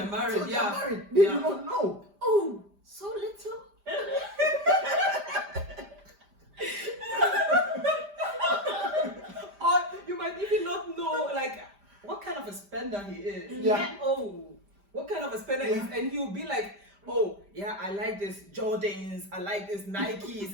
are married. They are married. They do not know. Oh, so little. Or you might even not know, like, what kind of a spender he is. Yeah. Oh, what kind of a spender Yeah. is? And he'll be like, oh, yeah, I like this Jordans, I like this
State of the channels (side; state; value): left; late; 5.0 ms